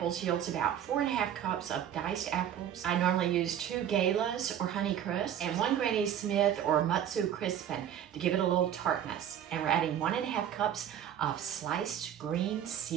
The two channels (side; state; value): left; quieter; 10.0 dB